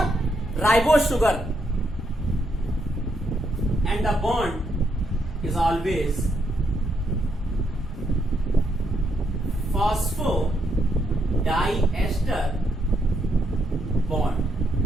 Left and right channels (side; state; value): both; normal; correlation 0.77